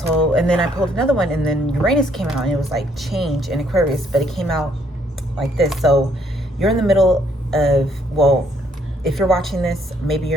and then I pulled another one, and then Uranus came out, and it was like change in Aquarius, but it came out like this. So you're in the middle of, well, if you're watching this, maybe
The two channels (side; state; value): both; normal; correlation 0.68